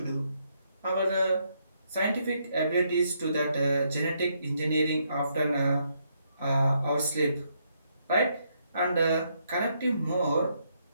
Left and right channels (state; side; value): inverted; both; correlation -0.75